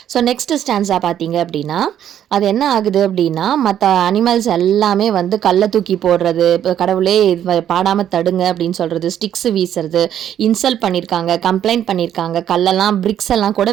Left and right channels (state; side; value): quieter; left; 10.3 dB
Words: ஸோ நெக்ஸ்ட் ஸ்டான்ஸா பார்த்தீங்க அப்படின்னா, அது என்ன ஆகுது அப்படின்னா, மற்ற அனிமல்ஸ் எல்லாமே வந்து கல்லை தூக்கி போடுறது, இப்போ கடவுளே பாடாமல் தடுங்க அப்படின்னு சொல்கிறது, ஸ்டிக்ஸ் வீசுறது, இன்சல்ட் பண்ணியிருக்காங்க, கம்ப்ளைண்ட் பண்ணியிருக்காங்க, கல்லெல்லாம் பிரிக்ஸ் எல்லாம் கூட